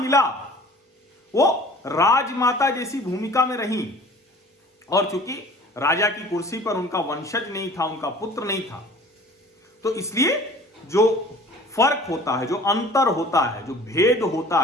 वो राजमाता जैसी भूमिका में रही, और चूंकि राजा की कुर्सी पर उनका वंशज नहीं था, उनका पुत्र नहीं था, तो इसलिए जो फर्क होता है, जो अंतर होता है, जो भेद होता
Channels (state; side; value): normal; both; correlation 0.47